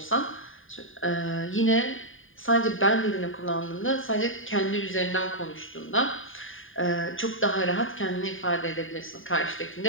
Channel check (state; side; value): late; right; 0.58 ms